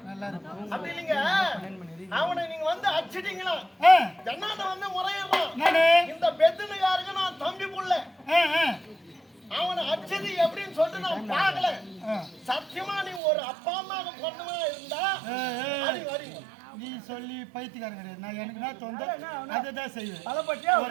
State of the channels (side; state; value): left; drops out; at 13.2 s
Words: நல்லா இருக்கும் அப்படி இல்லைங்க அவனை நீங்க வந்து அடிச்சிட்டீங்களா ஜன்னாட்ட வந்து முறையிடுறான் இந்த பெத்துனுக்காரங்க நான் தம்பி புள்ள அவனை அடிச்சது எப்படின்னு சொல்லிட்டு நான் பார்க்கல சத்தியமா நீ ஒரு அப்பா அம்மாவுக்கு பொண்ணுமா இருந்தா நீ சொல்லி பைத்தியக்காரன் கிடையாது நான் எனக்கு நான் தோந்து அதை தான் செய்வேன் பலப்பட்டியா